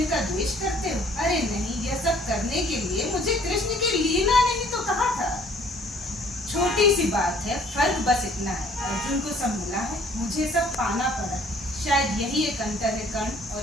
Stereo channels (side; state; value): both; normal; correlation 0.57